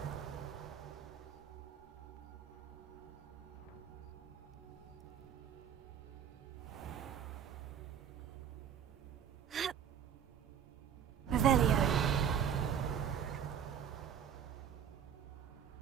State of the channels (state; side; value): quieter; left; 8.5 dB